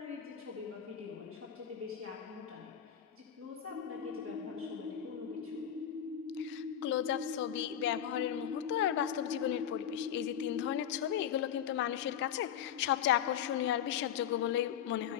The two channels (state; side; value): quieter; right; 9.5 dB